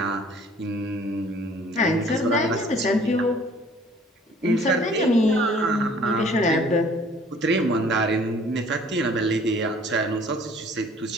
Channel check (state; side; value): normal; both; correlation 0.54